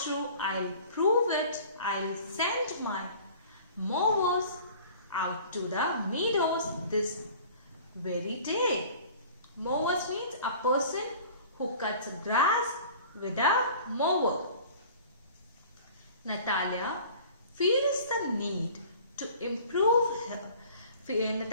I'll prove it. I'll send my mowers out to the meadows this very day. Mowers means a person who cuts grass with a mower. Natalia feels the need to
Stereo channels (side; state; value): both; inverted; correlation -0.46